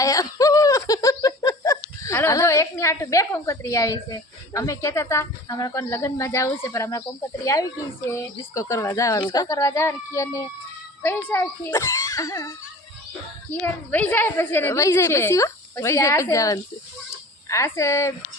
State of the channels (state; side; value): normal; both; correlation 0.41